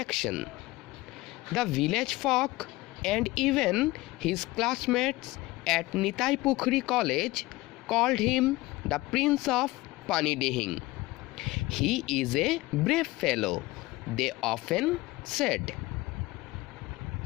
The village folk and even his classmates at Nitai Pukhuri College called him the Prince of Panidihing. He is a brave fellow, they often said.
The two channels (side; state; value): right; quieter; 19.6 dB